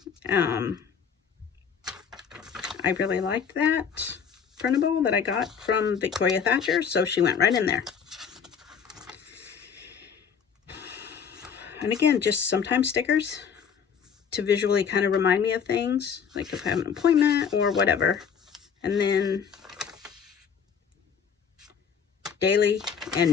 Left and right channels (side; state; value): right; quieter; 6.9 dB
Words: I really liked that printable that I got from Victoria Thatcher, so she went right in there. And again, just sometimes stickers to visually kind of remind me of things, like if I have an appointment or whatever. And then daily